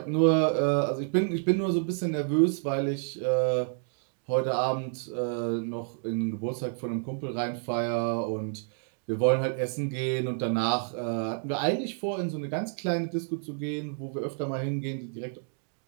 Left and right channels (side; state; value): left; silent; digital silence